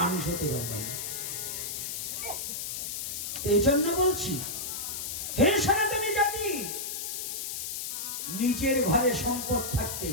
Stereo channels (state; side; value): noise; left; hiss, 4 dB below the sound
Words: হতে পারবে না। এই জন্য বলছি, হে সনাতনী জাতি, নিজের ঘরে সম্পদ থাকতে